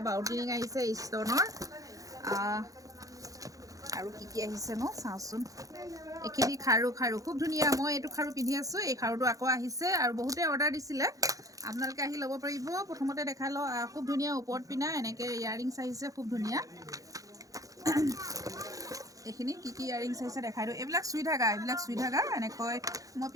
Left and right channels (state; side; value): late; left; 0.17 ms